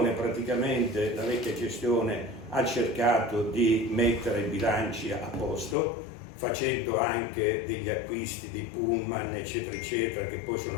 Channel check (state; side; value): drops out; right; at 5.8 s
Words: vecchia gestione ha cercato di mettere i bilanci a posto, facendo anche degli acquisti di pullman, eccetera, eccetera, che poi sono